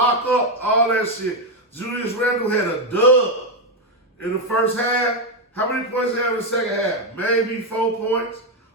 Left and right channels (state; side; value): normal; both; correlation 0.05